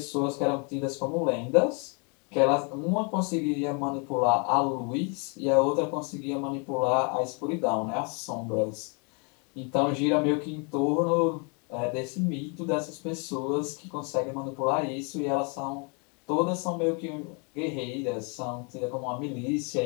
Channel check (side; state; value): right; quieter; 35.0 dB